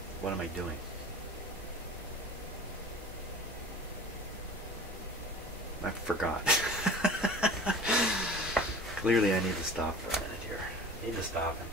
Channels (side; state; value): both; normal; correlation 0.40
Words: what am I doing? I forgot. Clearly I need to stop for a minute here. Need to stop and